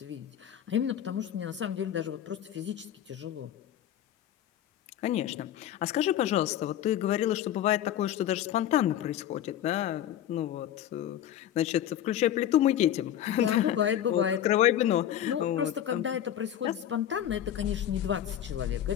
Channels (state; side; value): quieter; right; 11.0 dB